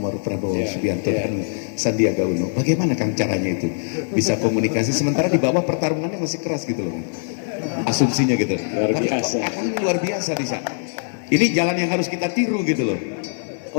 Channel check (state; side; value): silent; right; digital silence